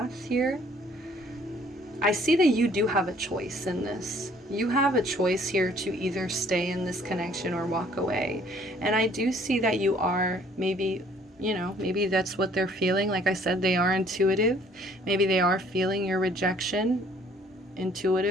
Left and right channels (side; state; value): both; normal; correlation 0.59